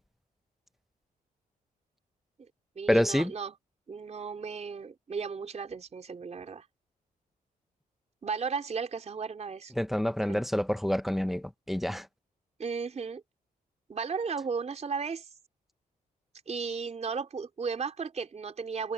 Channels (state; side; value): normal; both; correlation 0.77